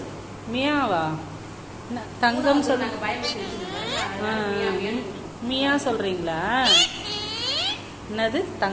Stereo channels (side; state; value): both; identical; correlation 1.00